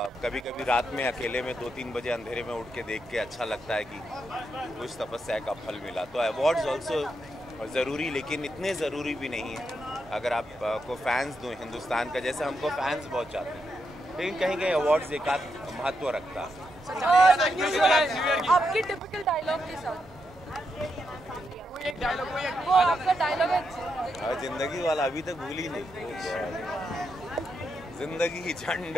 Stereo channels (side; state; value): both; normal; correlation 0.83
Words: कभी कभी रात में अकेले में 2-3 बजे अंधेरे में उठ के देख के अच्छा लगता है कि कुछ तपस्या का फल मिला। तो अवार्ड्स ऑल्सो ज़रूरी, लेकिन इतने ज़रूरी भी नहीं है। अगर आपको फैंस दो हिंदुस्तान का, जैसे हमको फैंस बहुत चाहते हैं, लेकिन कहीं कहीं अवार्ड्स एक आध महत्व रखता है। आपकी टिपिकल डायलॉग के साथ वो आपका डायलॉग है जिंदगी वाला, अभी तक भूल ही नहीं। जिंदगी झंड